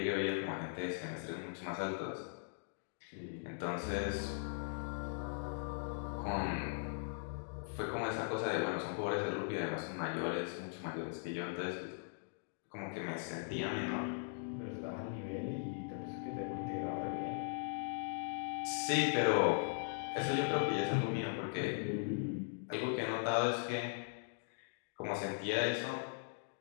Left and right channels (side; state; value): right; silent; digital silence